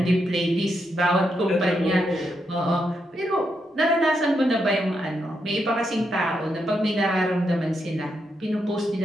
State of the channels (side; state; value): both; normal; correlation 0.82